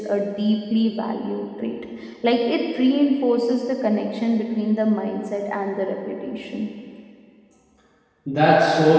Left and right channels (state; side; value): identical; both; correlation 1.00